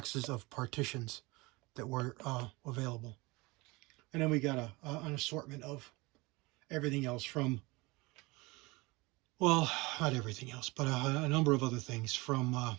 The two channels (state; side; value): quieter; left; 23.8 dB